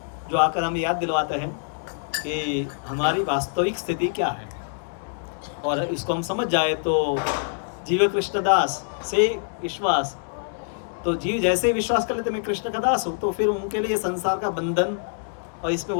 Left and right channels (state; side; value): silent; right; digital silence